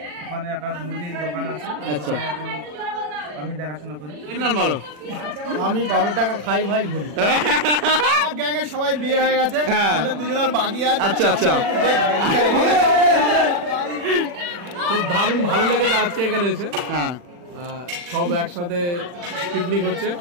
ওখানে একটা মুদির দোকান আছে। আচ্ছা এখন আমি দেখাশোনা করি। ইমরান বলো। আমি 12 টাকা খাই ভাই ঘুরি। গ্যাংয়ে সবাই বিয়ে হয়ে গেছে, আমাদের দুজনের বাকি আছে। আচ্ছা আচ্ছা খুব দারুণ ভালো লেগেছে আজকে এখানে এসে। হ্যাঁ সব একসাথে পিকনিক হচ্ছে,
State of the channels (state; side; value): late; left; 40 ms